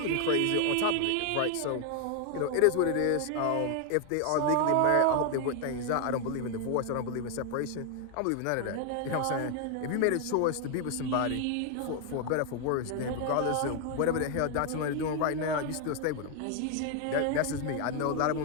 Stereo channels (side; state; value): both; different; correlation 0.00